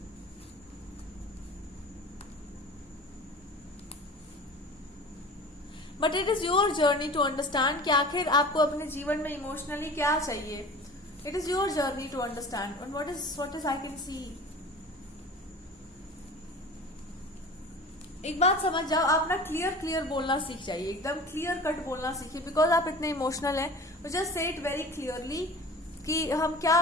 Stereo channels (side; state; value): both; normal; correlation 0.39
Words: But it is your journey to understand कि आखिर आपको अपने जीवन में इमोशनली क्या चाहिए. It is your journey to understand. And what is I can see. एक बात समझ जाओ, आप ना क्लियर बोलना सीख जाइए, एकदम क्लियर कट बोलना सीखिए. बिकॉज आप इतने इमोशनल हैं, just say it very clearly कि हम